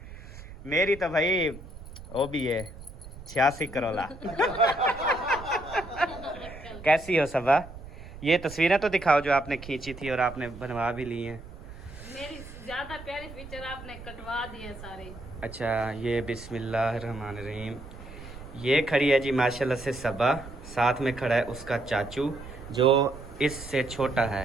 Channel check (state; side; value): noise; right; rumble, 15 dB below the sound